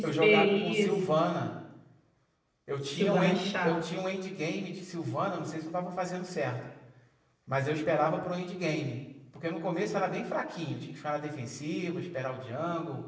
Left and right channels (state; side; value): identical; both; correlation 1.00